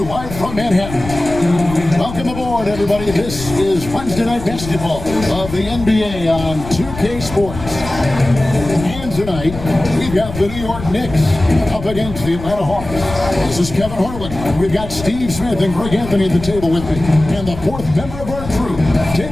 live from Manhattan. Welcome aboard, everybody. This is Wednesday Night Basketball of the NBA on 2K Sports. And tonight, we've got the New York Knicks up against the Atlanta Hawks. This is Kevin Harlan. We've got Steve Smith and Greg Anthony at the table with me. And the fourth member of our crew,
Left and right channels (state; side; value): noise; left; rumble, 11 dB below the sound